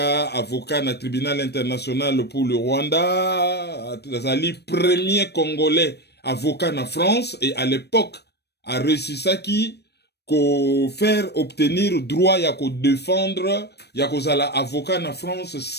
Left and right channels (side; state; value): right; late; 0.48 ms